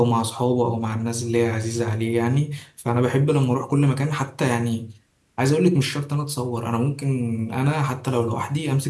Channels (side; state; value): both; identical; correlation 1.00